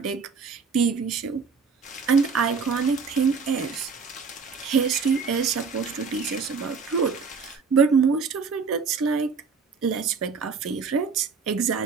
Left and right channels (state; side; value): quieter; left; 5.3 dB